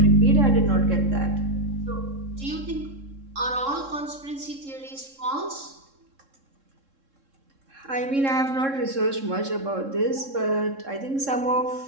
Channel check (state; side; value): late; left; 3.7 ms